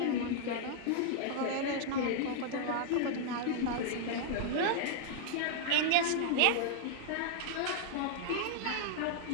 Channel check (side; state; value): both; different; correlation -0.01